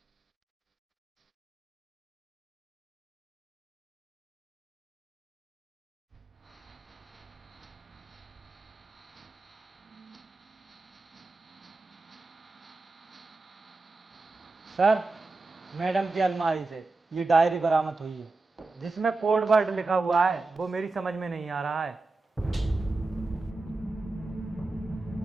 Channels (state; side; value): quieter; left; 3.4 dB